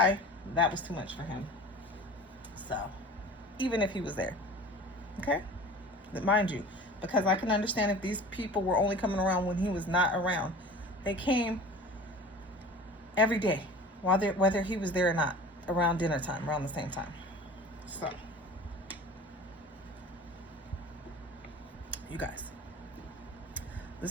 That was too much for him. So, even if he was there, okay? But mind you, because I can understand if these people were only coming around when he was not around. They came every day, whether he was there or not, around dinner time, around the same time. So, you guys,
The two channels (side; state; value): both; normal; correlation 0.40